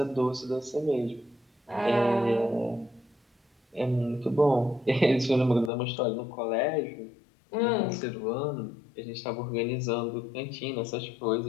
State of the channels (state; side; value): drops out; right; at 5.7 s